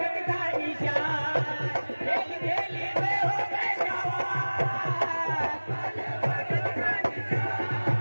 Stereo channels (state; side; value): inverted; both; correlation -1.00